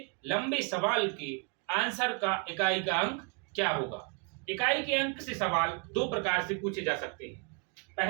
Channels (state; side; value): quieter; left; 35.7 dB